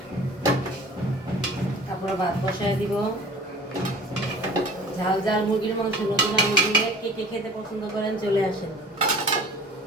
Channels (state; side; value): normal; both; correlation 0.45